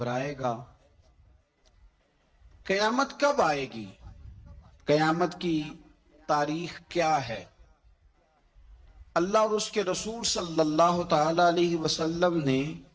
گا۔ قیامت کب آئے گی؟ قیامت کی تاریخ کیا ہے؟ اللہ اور اس کے رسول صلی اللہ تعالی علیہ وسلم نے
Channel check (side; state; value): both; identical; correlation 1.00